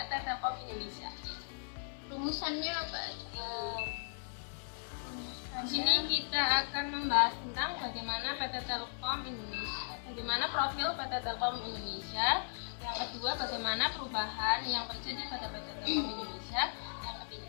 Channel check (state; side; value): silent; right; digital silence